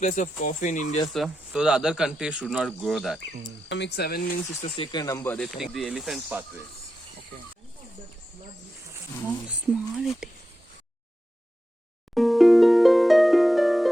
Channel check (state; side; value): normal; both; correlation 0.89